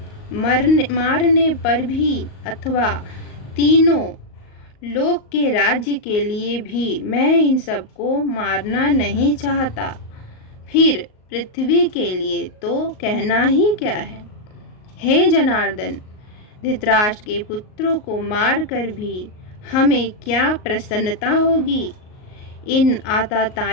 मारने पर भी अथवा तीनों लोक के राज्य के लिए भी मैं इन सबको मारना नहीं चाहता। फिर पृथ्वी के लिए तो कहना ही क्या है। हे जनार्दन, धृतराष्ट्र के पुत्रों को मारकर भी हमें क्या प्रसन्नता होगी। इन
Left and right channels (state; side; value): late; right; 38 ms